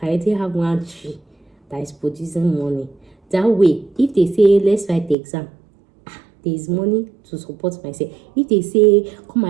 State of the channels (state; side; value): drops out; left; at 5.2 s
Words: I already have one tree that is producing money. That way, if they say let's write the exam, there is money to support myself. If they say come